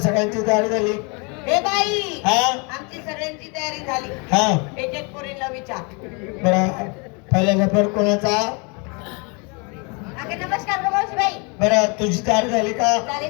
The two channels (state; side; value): quieter; right; 32.3 dB